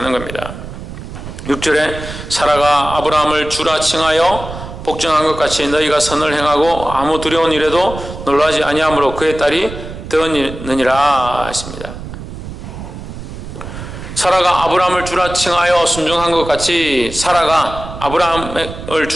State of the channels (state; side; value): noise; right; rumble, 10 dB below the sound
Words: 겁니다. 6절에 사라가 아브라함을 주라 칭하여 복종한 것 같이 너희가 선을 행하고 아무 두려운 일에도 놀라지 아니하므로 그의 딸이 되었느니라 했습니다. 사라가 아브라함을 주라 칭하여 순종한 것 같이 사라가 아브라함을